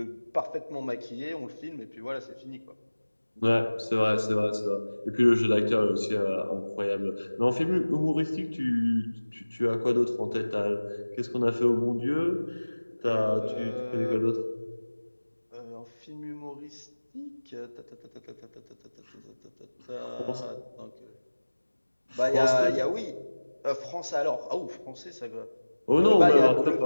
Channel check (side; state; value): both; inverted; correlation -1.00